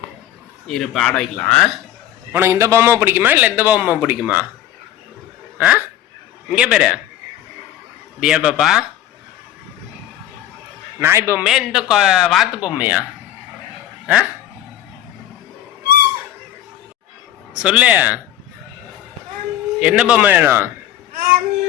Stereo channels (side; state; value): right; quieter; 12.1 dB